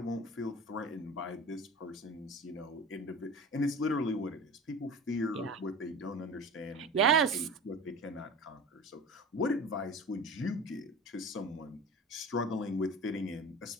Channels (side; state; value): both; normal; correlation 0.35